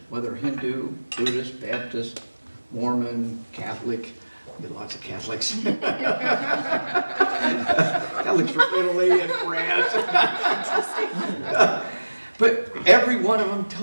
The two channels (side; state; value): both; inverted; correlation -1.00